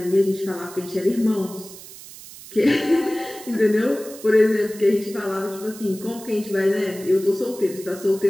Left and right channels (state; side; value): noise; right; hiss, 16 dB below the sound